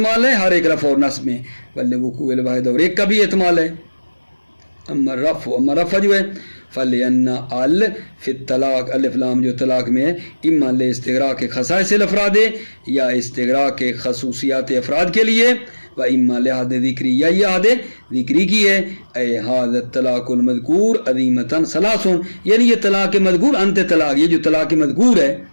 ہے ہر ایک رفع اور نصب میں، ولوقوع الواحدہ اور ایک کا بھی احتمال ہے. اما رفع جو ہے فلان ال فی الطلاق، الف لام جو طلاق میں ہے اما لاستغراق کے خصائص الافراد یا استغراق کے خصوصیات افراد کے لیے، و اما لحاظ ذکری یا یہ حد ذکری کی ہے اے حاض طلاق المذکور عظیمتاً ثلاثن یعنی یہ طلاق مذکور انت طلاق یہ جو طلاق مذکور ہے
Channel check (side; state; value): both; inverted; correlation -1.00